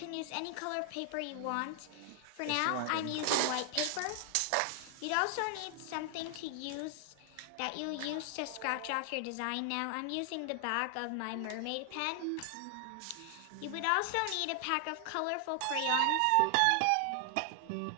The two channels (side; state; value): both; different; correlation 0.00